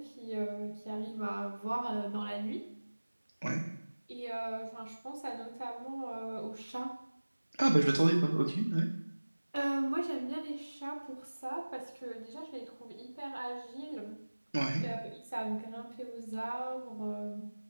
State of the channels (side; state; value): both; inverted; correlation -1.00